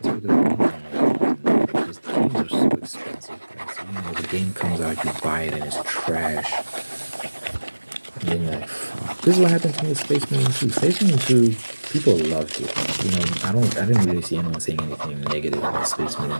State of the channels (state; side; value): inverted; both; correlation -1.00